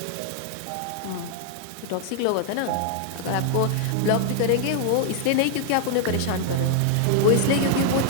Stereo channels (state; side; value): different; both; correlation 0.00